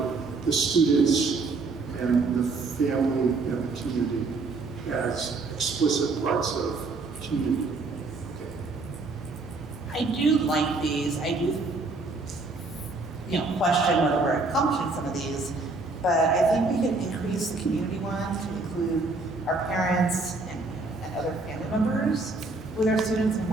the students and the family and the community as explicit parts of community. I do like these. I do, question whether we're accomplishing some of these, but I think we can increase the community ones to include our parents and other family members with our students and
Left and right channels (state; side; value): quieter; left; 3.6 dB